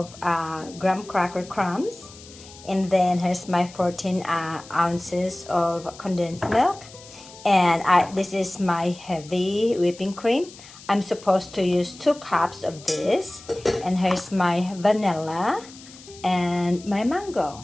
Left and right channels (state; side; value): noise; left; hiss, 19 dB below the sound